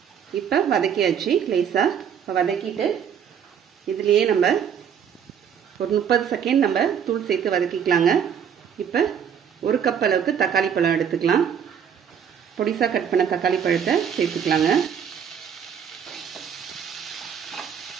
இப்போ வதக்கியாச்சு லேசா. இப்போ வதக்கிட்டு இதுலேயே நம்ம ஒரு 30 செகண்ட் நம்ம தூள் சேர்த்து வதக்கிக்கலாங்க. இப்போ 1 கப் அளவுக்கு தக்காளி பழம் எடுத்துக்கலாம். பொடிசா கட் பண்ண தக்காளி பழத்தை சேர்த்துக்கலாங்க.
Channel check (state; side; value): quieter; left; 7.9 dB